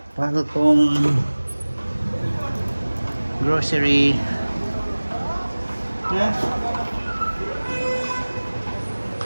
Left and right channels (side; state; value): both; inverted; correlation -1.00